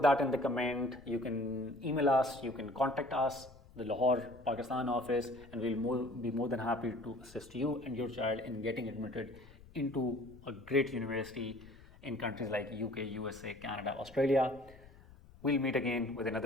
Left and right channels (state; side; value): noise; left; rumble, 22 dB below the sound